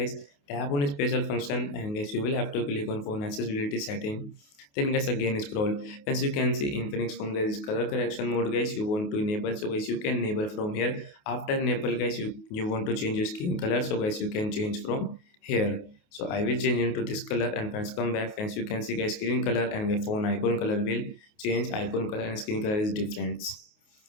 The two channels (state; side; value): late; right; 28 ms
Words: Tap on special function and guys you will have to click on phone accessibility setting. Then guys again scroll. As you can see Infinix phone guys color correction mode guys you want to enable. So guys you can enable from here. After enable guys you want to change your skin color. So guys you can change from here. So I will change into this color and friends come back. Friends you can see guys screen color and the phone icon color will change. Icon color and screen color is different.